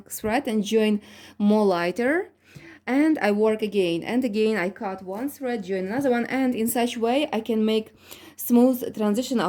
thread, and join more lighter. And I work again and again. I cut one thread, join another one, and in such way I can make smooth transition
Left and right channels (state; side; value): identical; both; correlation 1.00